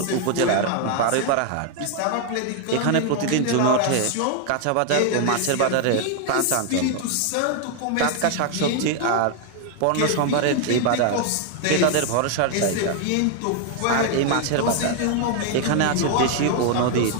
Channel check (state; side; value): different; both; correlation 0.00